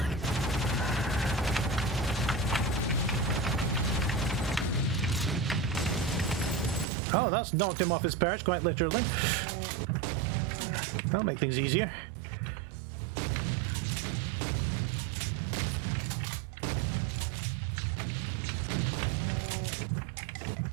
Oh, that's knocked him off his perch, quite literally. That'll make things easier.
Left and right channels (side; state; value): left; drops out; at 6.9 s